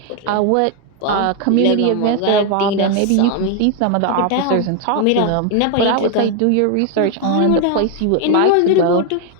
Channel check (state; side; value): different; both; correlation 0.01